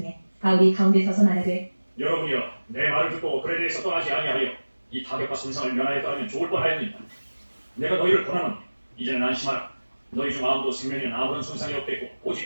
바울이 가운데 서서 말하되 여러분이여 내 말을 듣고 그에 대해서 떠나지 아니하여 이 타격과 손상을 면하였다면 좋을 뻔하였느니라 내가 너희를 권하노니 이제는 안심하라 너희 중 아무도 생명에는 아무런 손상이 없겠고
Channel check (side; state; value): both; inverted; correlation -1.00